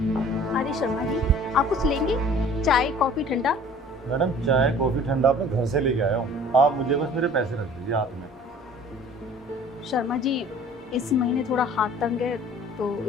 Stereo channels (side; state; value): both; normal; correlation 0.49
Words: अरे शर्मा जी आप कुछ लेंगे? चाय कॉफी ठंडा? मैडम चाय कॉफी ठंडा अपने घर से लेके आया हूँ, आप मुझे बस मेरे पैसे रख दीजिए हाथ में। शर्मा जी इस महीने थोड़ा हाथ तंग है, तो